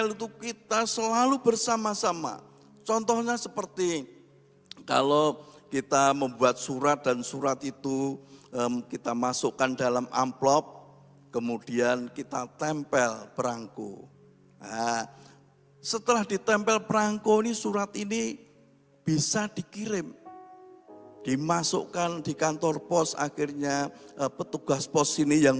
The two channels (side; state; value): both; identical; correlation 1.00